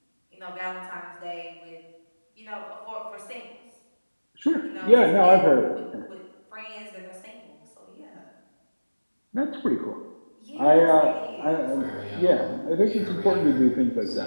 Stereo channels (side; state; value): both; inverted; correlation -1.00